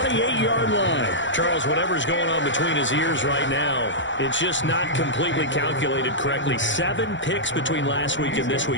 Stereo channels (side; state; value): right; late; 0.54 ms